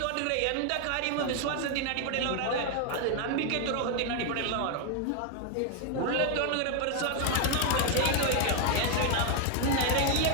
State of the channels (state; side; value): different; both; correlation 0.01